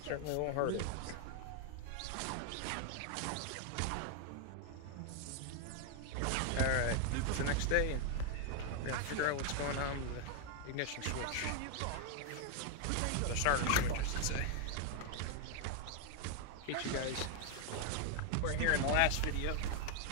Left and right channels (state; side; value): different; both; correlation 0.00